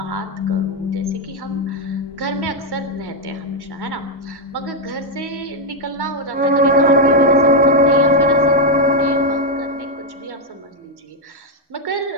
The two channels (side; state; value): both; normal; correlation 0.01